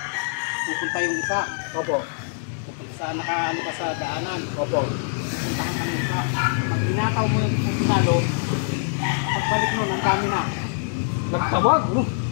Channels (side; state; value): right; silent; digital silence